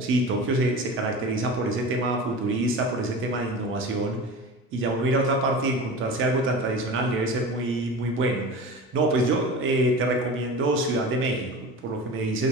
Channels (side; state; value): both; normal; correlation 0.33